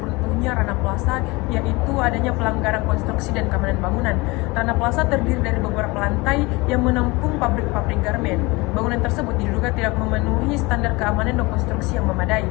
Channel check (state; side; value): quieter; right; 24.0 dB